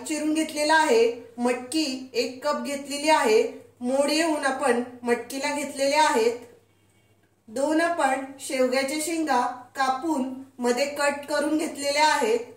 चिरून घेतलेला आहे, मटकी 1 कप घेतलेली आहे, मोड येऊन आपण मटकीला घेतलेले आहेत. 2 आपण शेवग्याच्या शेंगा कापून मध्ये कट करून घेतलेल्या आहेत.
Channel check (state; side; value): identical; both; correlation 1.00